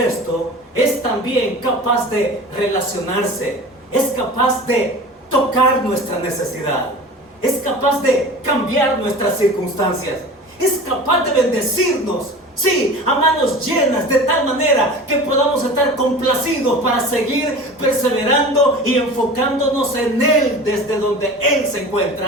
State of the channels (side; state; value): both; normal; correlation 0.37